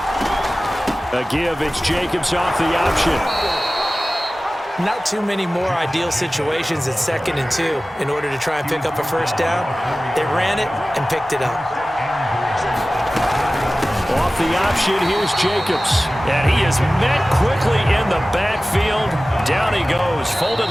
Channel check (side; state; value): both; normal; correlation 0.96